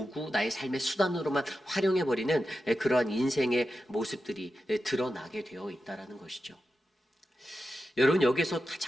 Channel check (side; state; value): both; normal; correlation 0.91